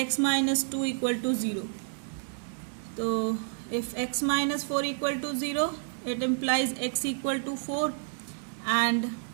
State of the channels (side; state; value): left; silent; digital silence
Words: minus 2 equal to 0। तो if x minus 4 equal to 0, it implies x equal to 4, and